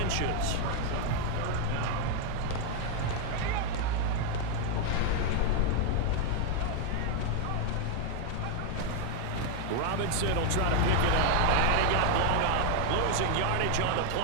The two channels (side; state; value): both; different; correlation 0.01